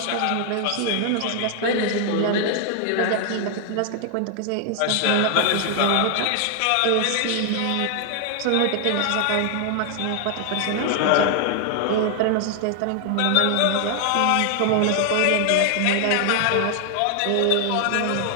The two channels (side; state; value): both; different; correlation 0.00